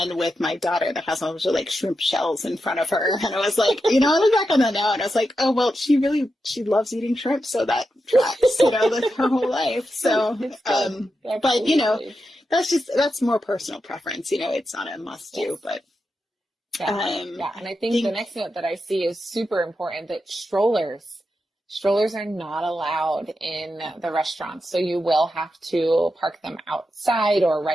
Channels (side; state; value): both; normal; correlation 0.88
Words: with my daughter that has a bunch of like shrimp shells in front of her. And I was like, I look back on that now and I was like, oh, well, she loves eating shrimp. So that tracks, like her whole life. So, but that's more personal preference. It's not a must do, but. Yeah. And I think the next note that I see is super important, that strollers are not allowed in the restaurants. So you will have to park them outside or